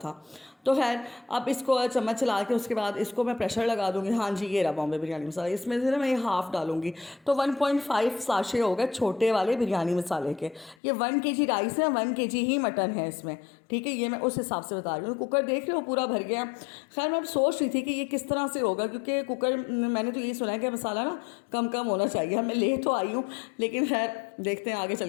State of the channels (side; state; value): right; drops out; at 10.8 s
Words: तो खैर अब इसको चम्मच चला के उसके बाद इसको मैं प्रेशर लगा दूँगी। हाँ जी, ये रहा बॉम्बे बिरयानी मसाला, इसमें से ना मैं ये हाफ़ डालूँगी, तो 1.5 साशे हो गए छोटे वाले बिरयानी मसाले के। ये 1 kg राइस है, 1 kg ही मटन है इसमें, ठीक है। ये मैं उस हिसाब से बता रही हूँ। कुकर देख रहे हो पूरा भर गया। खैर मैं सोच रही थी कि ये किस तरह से होगा, क्योंकि कुकर मैंने तो यही सुना है कि मसाला ना कम कम होना चाहिए। मैं ले तो आई हूँ, लेकिन खैर देखते हैं आगे